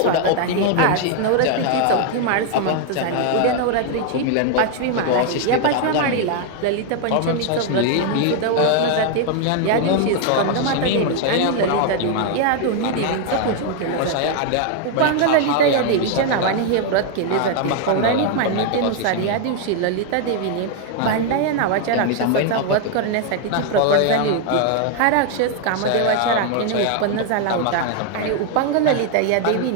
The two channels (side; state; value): both; different; correlation 0.00